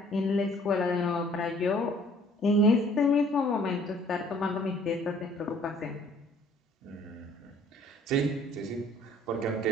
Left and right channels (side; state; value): both; normal; correlation 0.57